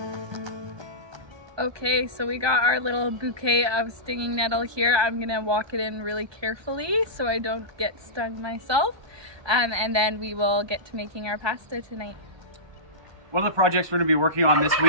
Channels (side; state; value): left; late; 1.2 ms